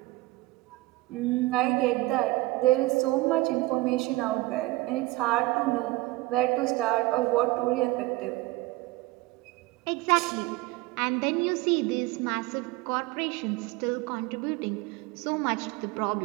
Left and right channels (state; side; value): quieter; left; 20.0 dB